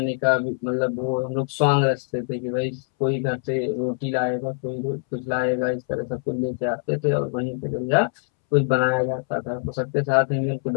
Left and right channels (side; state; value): right; silent; 63 dB below the other